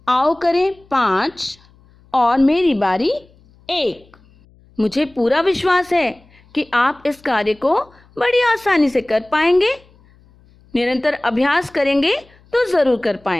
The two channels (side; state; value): left; noise; hum, 30 dB below the sound